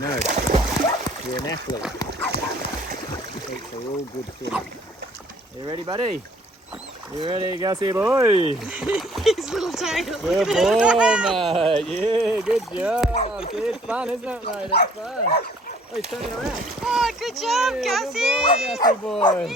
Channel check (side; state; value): both; normal; correlation 0.58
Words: You're an athlete. Athletes are all good swimmers. You ready, buddy? You ready, Gussie boy? His little tail. Good boy, mate. Yeah, good job. See, it's fun, isn't it, mate? It's fun. Oh, he's turning around. Oh, good job, Yeah, Gussie. Good boy, Gussie boy.